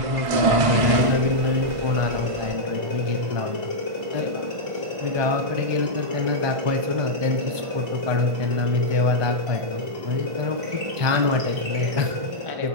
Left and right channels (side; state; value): left; late; 1.5 ms